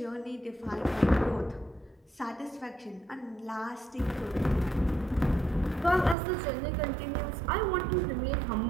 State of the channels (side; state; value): left; drops out; at 6.2 s